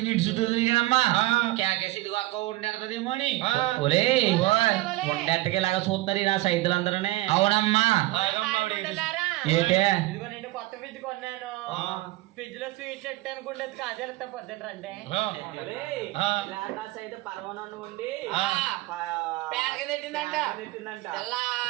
ఇటు చుట్టూ తిరిగానమ్మా కేకేసి ఇదిగో అక్క ఉండేదేమో అని ఉండేట్టుకి ఇలాగా చూస్తున్నారు నా సైతులందరూనే అవునమ్మా ఏంటే కొత్త ఫ్రిడ్జ్ కొన్నాను ఫ్రిడ్జ్ లో స్వీట్ చెట్టు అనుకుంటే కాజేస్తా పొద్దున రండి ఉండి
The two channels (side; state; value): left; quieter; 19.0 dB